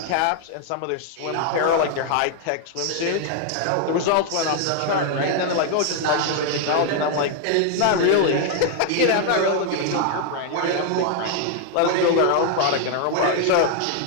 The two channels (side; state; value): both; different; correlation 0.00